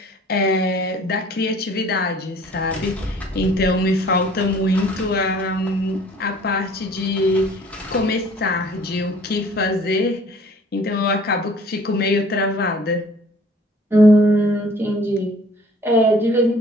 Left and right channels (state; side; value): normal; both; correlation 0.52